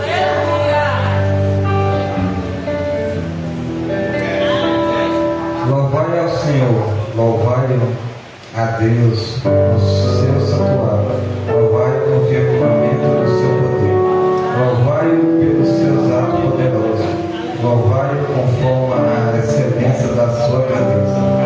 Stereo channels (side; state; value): both; identical; correlation 1.00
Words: Louvai ao Senhor, louvai a Deus no seu santuário, louvai no firmamento do seu poder, louvai-o pelos seus atos poderosos, louvai-o conforme a excelência da sua grandeza,